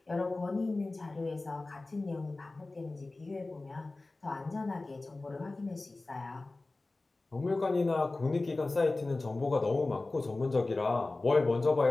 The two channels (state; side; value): quieter; right; 3.2 dB